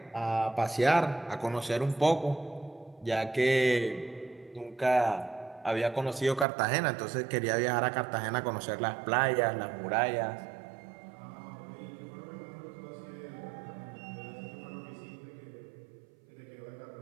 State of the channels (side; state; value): left; drops out; at 6.5 s